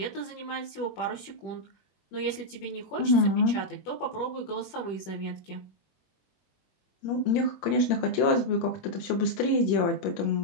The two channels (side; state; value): right; late; 20 ms